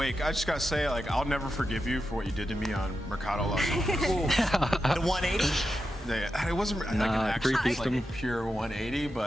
I just gotta say, like, I'll never forgive you for what you did to me on Mercado last night. The 180? It wasn't like an actual like pure 180,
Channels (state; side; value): normal; both; correlation 0.89